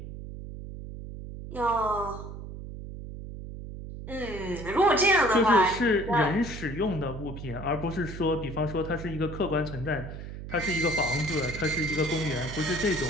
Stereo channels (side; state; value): right; noise; hum, 10 dB below the sound